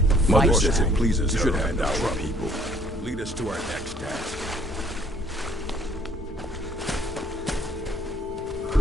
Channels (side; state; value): both; normal; correlation 0.60